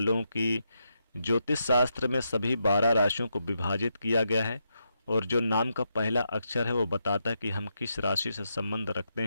की ज्योतिष शास्त्र में सभी 12 राशियों को विभाजित किया गया है, और जो नाम का पहला अक्षर है वो बताता है कि हम किस राशि से संबंध रखते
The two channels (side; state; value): both; inverted; correlation -0.83